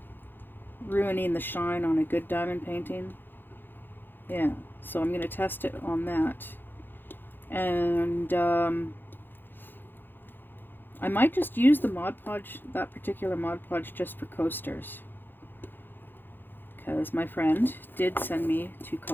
ruining the shine on a good diamond painting. Yeah, so I'm going to test it on that, and I might just use the Mod Podge, that particular Mod Podge, just for coasters, because my friend did send me 2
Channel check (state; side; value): late; right; 0.096 ms